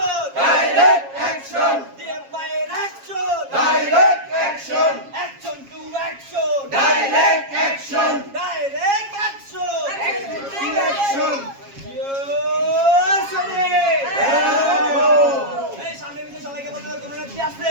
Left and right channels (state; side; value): late; left; 7.3 ms